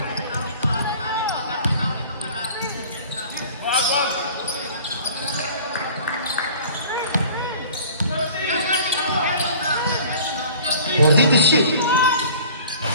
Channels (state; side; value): inverted; both; correlation -0.46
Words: Worthy to shoot.